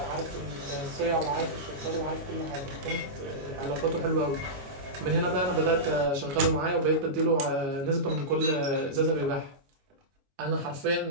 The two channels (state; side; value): late; left; 22 ms